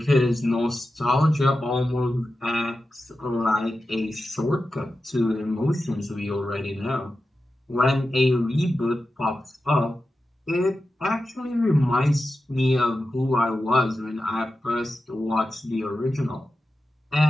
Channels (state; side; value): normal; both; correlation 0.92